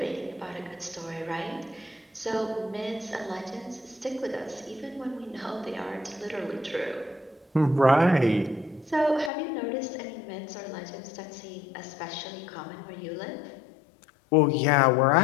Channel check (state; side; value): drops out; right; at 9.3 s